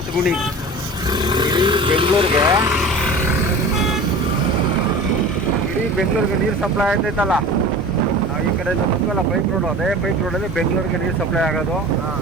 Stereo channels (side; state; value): both; normal; correlation 0.37